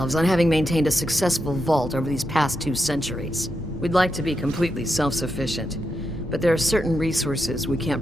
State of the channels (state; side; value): normal; both; correlation 0.85